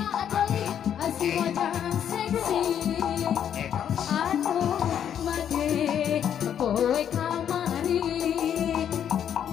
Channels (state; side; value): quieter; right; 9.2 dB